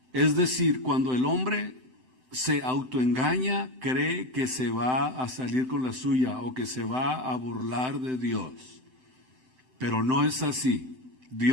Es decir, cuando el hombre se autoengaña, cree que se va a salir con la suya o que se va a burlar de Dios. Pero no es así.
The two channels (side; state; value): left; late; 7.8 ms